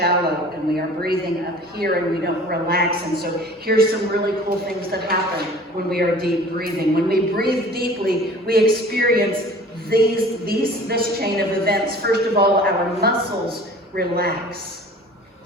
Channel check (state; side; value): normal; both; correlation 0.45